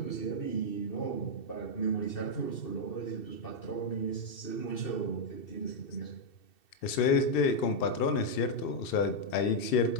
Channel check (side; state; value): right; late; 2.7 ms